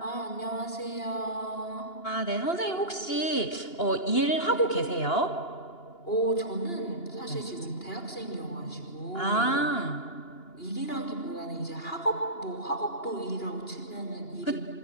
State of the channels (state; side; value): late; right; 2.8 ms